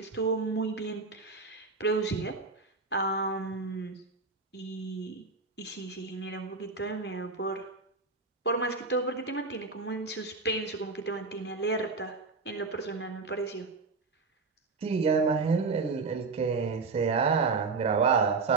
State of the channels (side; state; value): left; quieter; 4.1 dB